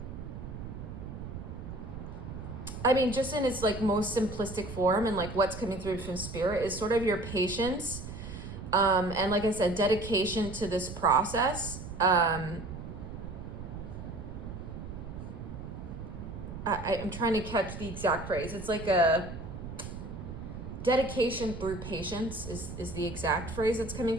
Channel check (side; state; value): right; noise; rumble, 9 dB below the sound